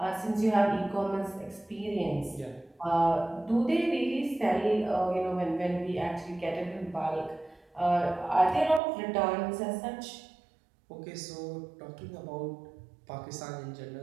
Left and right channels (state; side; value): drops out; left; at 8.8 s